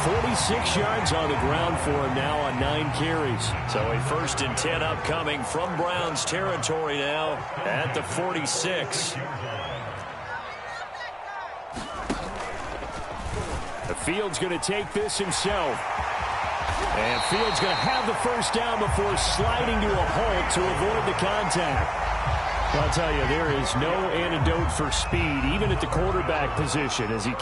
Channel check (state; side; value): identical; both; correlation 1.00